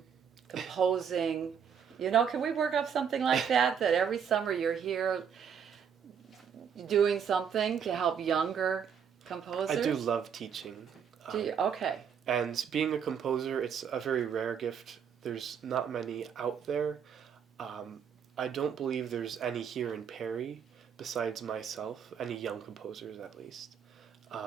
composing, You know, can we work up something like that? That every summer you're here doing something to help younger composers? I do love teaching. Do you? Okay. And being a composer, it's a very rare gift. There's not many out there. I don't believe there's any here in Perry besides myself, any young composers at least.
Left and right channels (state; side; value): quieter; left; 7.5 dB